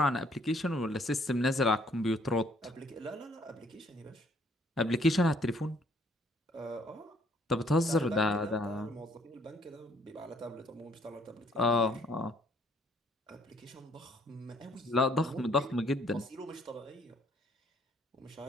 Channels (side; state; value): both; normal; correlation 0.64